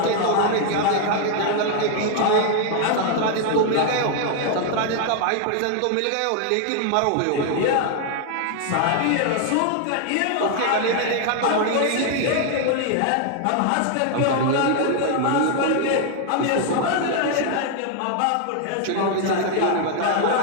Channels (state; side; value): different; both; correlation 0.00